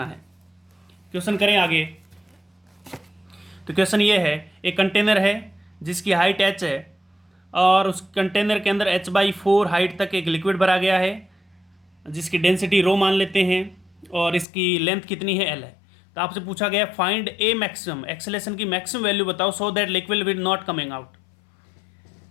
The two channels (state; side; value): drops out; right; at 14.5 s